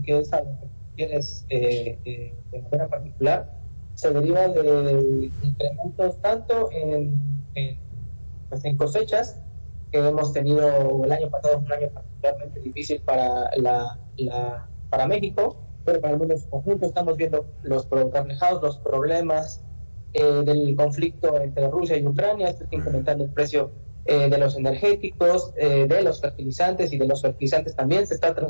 que es algo que tienes de manera particular, se deriva de incrementos tanto en cosechas, que hemos tenido el año pasado, un año particularmente difícil para para México, pero para el mundo en su conjunto. Estamos viendo reflejados los problemas del conflicto entre Rusia y Ucrania. Esto está incrementando el precio de los energéticos, de los fertilizantes, y de los fertilizantes también se está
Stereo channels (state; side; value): inverted; both; correlation -1.00